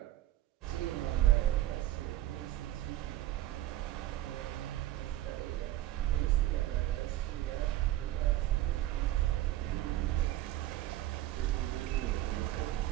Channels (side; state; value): left; quieter; 14.6 dB